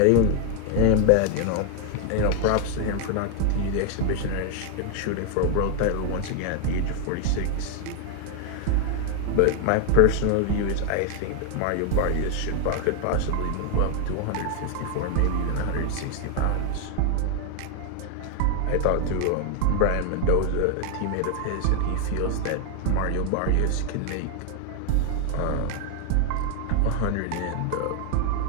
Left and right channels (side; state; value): both; different; correlation 0.00